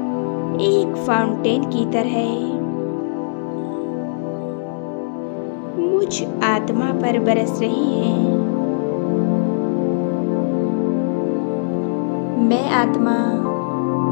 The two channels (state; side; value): silent; right; digital silence